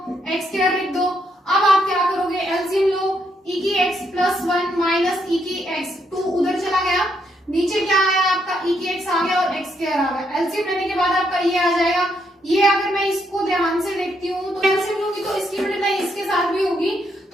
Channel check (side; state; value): both; normal; correlation 0.76